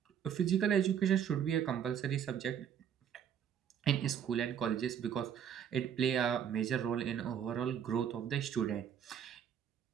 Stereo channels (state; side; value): quieter; left; 8.6 dB